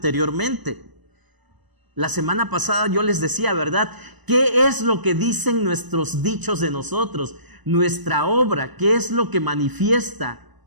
La semana pasada yo les decía, ¿verdad? ¿Qué es lo que dicen nuestros dichos de nosotros? Nuestra obra, ¿qué es lo que manifiesta?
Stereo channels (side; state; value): left; late; 1.0 ms